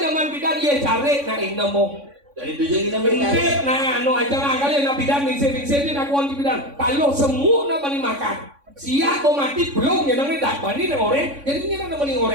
zaman bidan iya cari nah ini mau. Dari tujuan kita Intip, nah, no aja lah kali nak bidan ningsir dia nak kuanti bidan. Kalau semua nak bani makan. Siap mau mati belum ya nanti tak bani nih orang. Jadi ini nak bani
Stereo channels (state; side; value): late; left; 3.6 ms